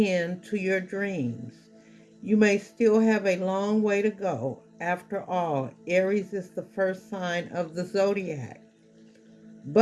to your dreams. You may still have a long way to go. After all, Aries is the first sign of the zodiac.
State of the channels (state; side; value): identical; both; correlation 1.00